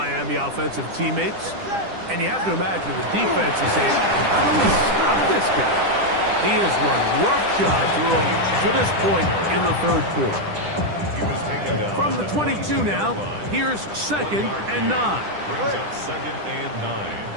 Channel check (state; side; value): late; left; 10 ms